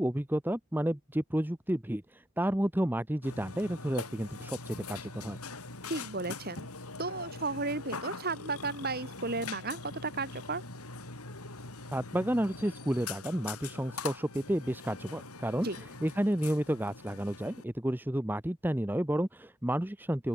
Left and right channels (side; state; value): both; normal; correlation 0.74